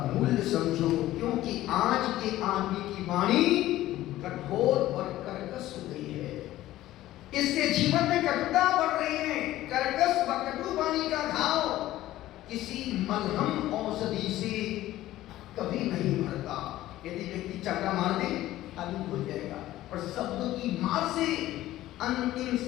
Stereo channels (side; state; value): right; quieter; 15.0 dB